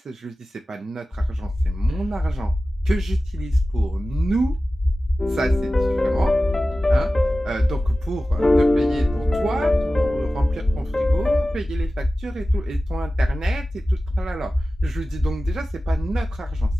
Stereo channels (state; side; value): normal; both; correlation 0.95